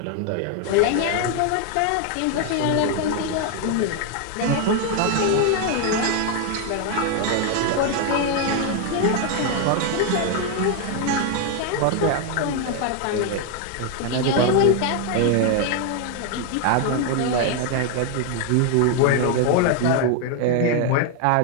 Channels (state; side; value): different; both; correlation 0.01